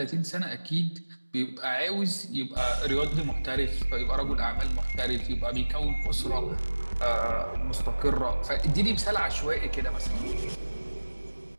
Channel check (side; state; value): both; inverted; correlation -1.00